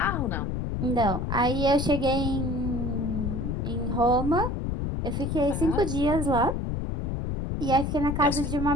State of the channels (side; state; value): left; noise; rumble, 2 dB below the sound